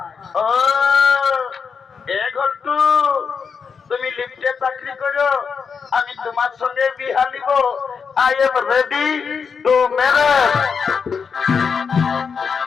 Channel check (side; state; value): right; quieter; 6.0 dB